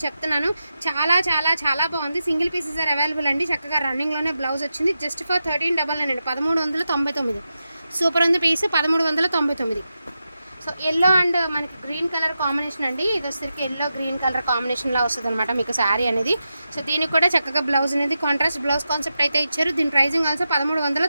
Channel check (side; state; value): both; inverted; correlation -0.90